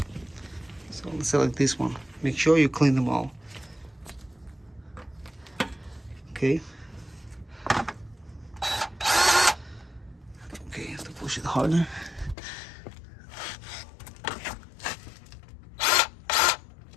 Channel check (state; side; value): drops out; right; at 12.4 s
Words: So let's select this one. Make sure you clean them all. Okay. Okay, you have to push it harder.